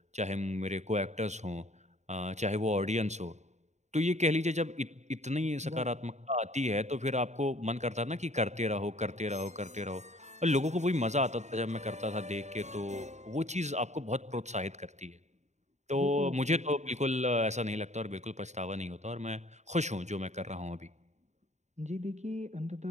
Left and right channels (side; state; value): left; late; 0.33 ms